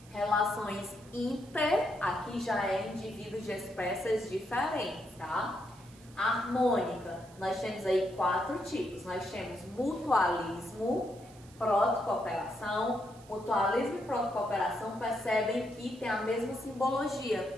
Relações inter, aqui já é indivíduos de espécies diferentes, tá? Harmônica, nós temos aí 4 tipos. Nós temos mutualismo, protocooperação. Mutualismo e protocooperação percebem que tem a mesma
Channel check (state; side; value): noise; right; hiss, 24 dB below the sound